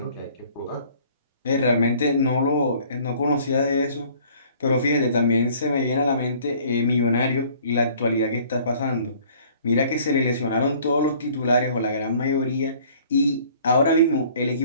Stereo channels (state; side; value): inverted; both; correlation -0.54